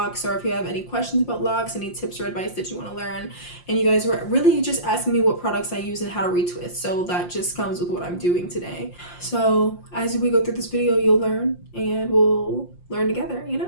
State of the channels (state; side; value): late; right; 5.7 ms